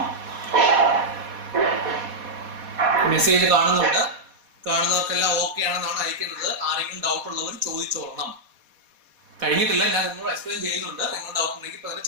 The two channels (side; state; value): left; late; 4.2 ms